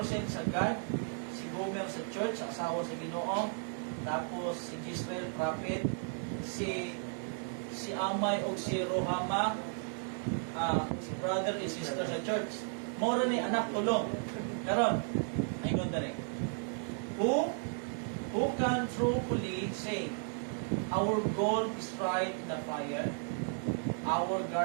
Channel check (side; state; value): left; silent; 55 dB below the other